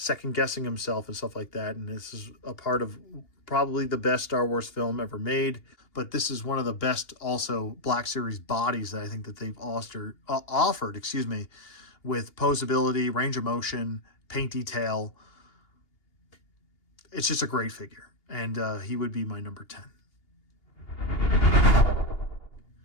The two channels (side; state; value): right; late; 2.8 ms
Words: guessing himself and stuff like that. And this is a part of probably the best Star Wars film ever made. But this is one of the best also Black Series bodies that I think that they've offered, with posability, range of motion, paint detail. It's just a great figure. And he would be my number 10.